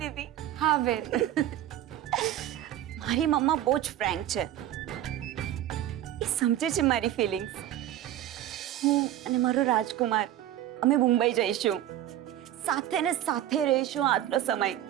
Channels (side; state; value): left; quieter; 12.5 dB